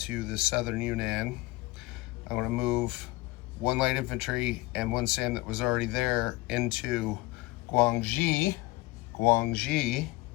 the southern Yunnan. I'm going to move 1 light infantry and 1 SAM that was already there into Guangxi.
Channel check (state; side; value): quieter; right; 21.6 dB